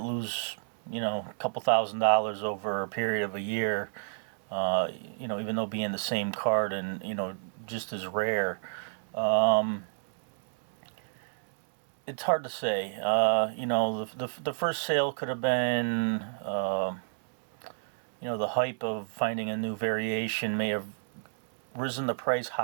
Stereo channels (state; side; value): silent; left; digital silence